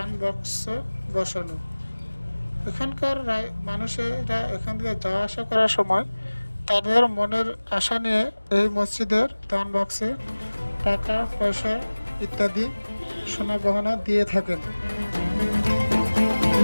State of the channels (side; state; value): both; inverted; correlation -1.00